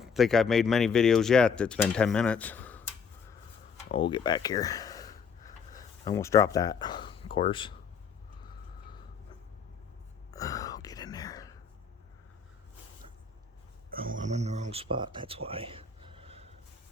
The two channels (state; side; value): quieter; right; 6.0 dB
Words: think I've made many videos yet that's been 10 minutes. Oh, we'll get back here. I almost dropped that, of course. Oh, get in there. Oh, I'm in the wrong spot. That's why.